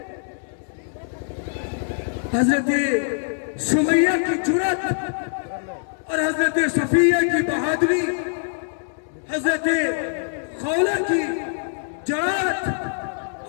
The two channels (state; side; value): silent; right; digital silence